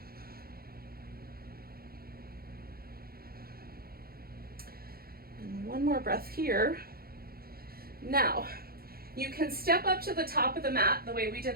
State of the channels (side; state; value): left; late; 0.44 ms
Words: And one more breath here. Now, you can step up to the top of the mat the way we